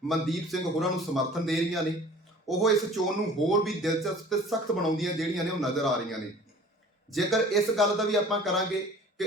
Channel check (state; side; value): normal; both; correlation 0.46